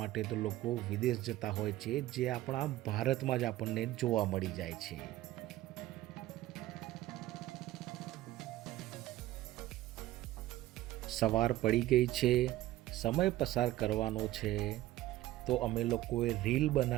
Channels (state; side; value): quieter; left; 15.4 dB